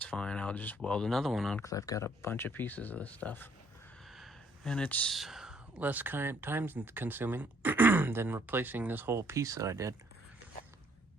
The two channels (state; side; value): normal; both; correlation 0.64